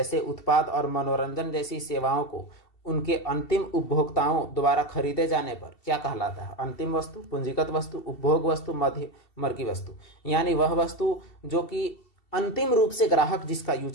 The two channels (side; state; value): right; late; 2.7 ms